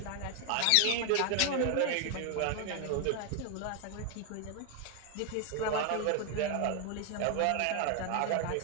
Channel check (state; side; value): different; both; correlation 0.01